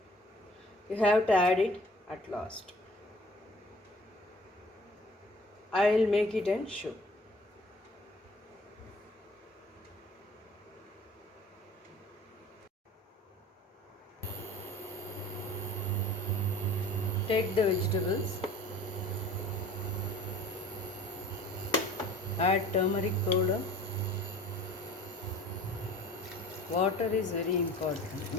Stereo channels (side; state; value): both; normal; correlation 0.47